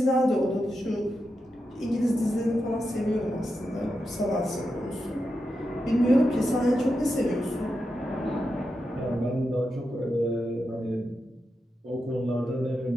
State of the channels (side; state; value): both; normal; correlation 0.88